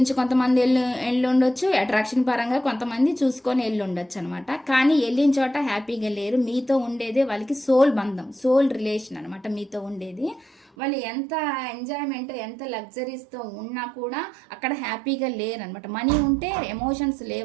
కొంతమంది వెళ్ళి ఉండొచ్చు, అట్రాక్షన్ పరంగా కొంతమంది చూసుకొని వెళ్ళి ఉండొచ్చు అనమాట. కానీ వెళ్ళిన చోట హ్యాపీగా లేరు, మీతో ఉండేదే వాళ్ళకి సోల్ బంధం, సోల్ రిలేషన్ అనమాట మీతో ఉండేది. వాళ్ళు ఎంత ఎంజాయ్మెంట్ ఎంత లగ్జరీస్తో ఉన్నా కూడా అక్కడ హ్యాపీగా లేరు అనమాట. మనీ ఉంటే ఎమోషన్స్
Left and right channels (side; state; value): left; drops out; at 10.7 s